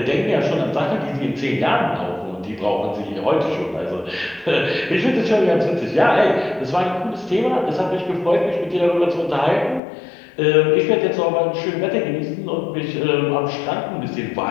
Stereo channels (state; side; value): drops out; right; at 9.8 s